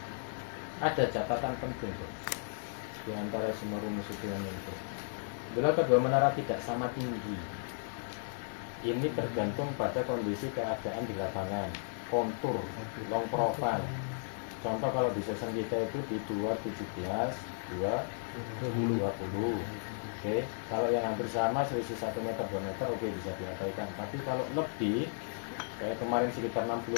Ada catatan penting tuh di antara semua rumus itu yang muncul. Bila kedua menara tidak sama tinggi, ini tergantung pada kondisi keadaan di lapangan, kontur, long profile. Contoh kalau di season kita itu di 217, 220. Oke, kalau yang hampir sama selisih 1 meter 2 meter oke bisa diabaikan. Tapi kalau lebih kayak kemarin sekitar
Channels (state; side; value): silent; right; 55 dB below the other